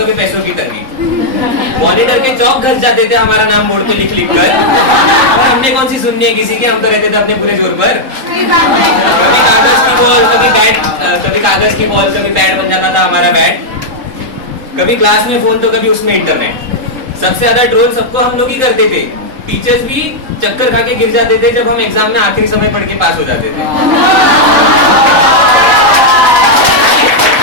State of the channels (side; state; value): left; late; 3.8 ms